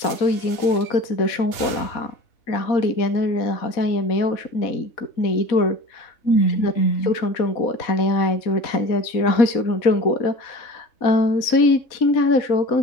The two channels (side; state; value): right; late; 4.1 ms